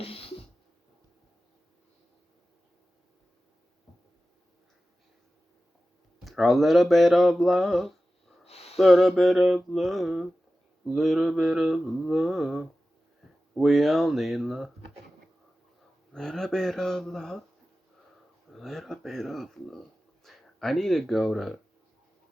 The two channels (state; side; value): normal; both; correlation 0.94